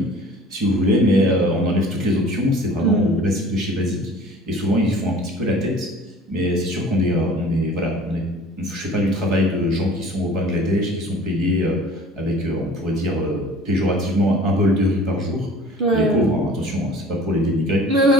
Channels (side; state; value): both; normal; correlation 0.46